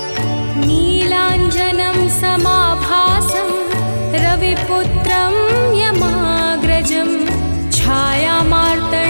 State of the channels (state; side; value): inverted; both; correlation -1.00